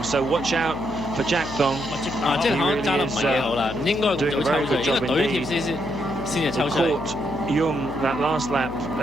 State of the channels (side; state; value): left; noise; hum, 11 dB below the sound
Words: So watch out for Jack Thong. 積達康揸得唔係幾好啦，唔應該咁早抽佢，應該隊貼先至抽出嚟。Young that last lap